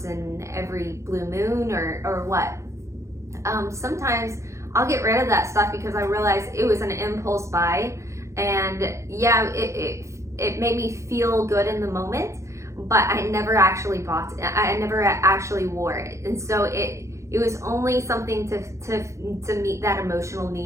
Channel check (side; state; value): left; late; 0.14 ms